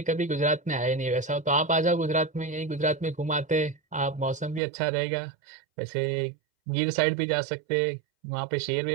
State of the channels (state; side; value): drops out; left; at 4.6 s